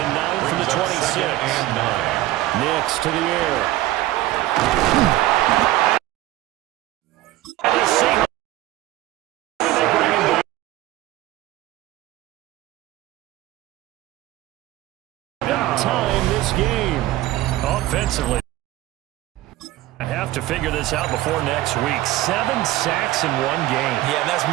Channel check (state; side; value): quieter; left; 16.1 dB